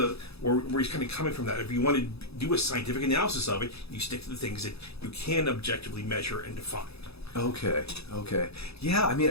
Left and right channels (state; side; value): late; right; 0.78 ms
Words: where he's kind of coming from that. If you want to do a scientific analysis of it, you stick to the things that you can objectively measure and define. Okay. Yeah, I mean,